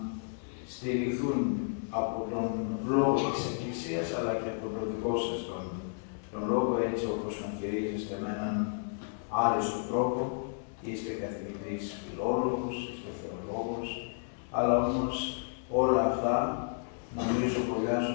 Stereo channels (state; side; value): silent; right; 56 dB below the other